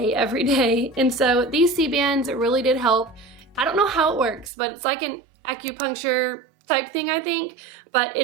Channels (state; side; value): drops out; left; at 4.5 s